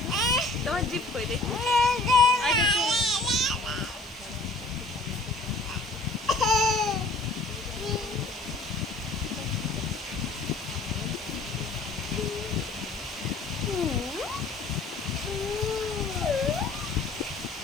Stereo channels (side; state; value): right; quieter; 3.1 dB